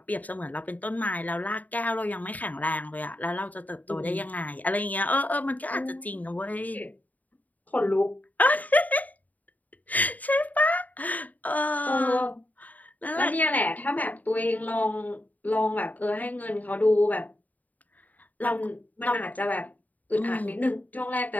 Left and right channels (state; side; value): late; right; 0.077 ms